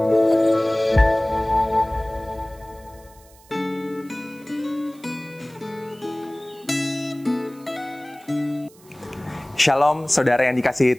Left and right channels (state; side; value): noise; right; hiss, 26 dB below the sound